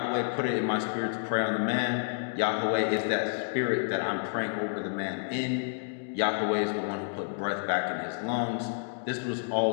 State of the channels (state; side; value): silent; right; digital silence